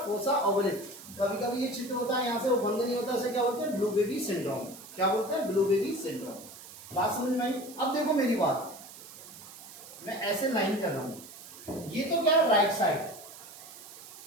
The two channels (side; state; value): right; noise; hiss, 16 dB below the sound